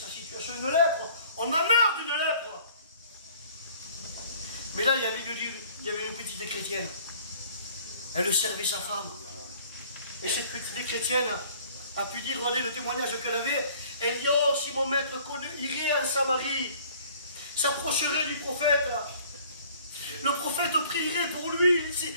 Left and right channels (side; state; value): both; inverted; correlation -0.53